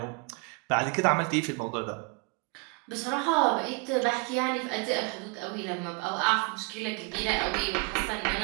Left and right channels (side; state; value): left; quieter; 29.8 dB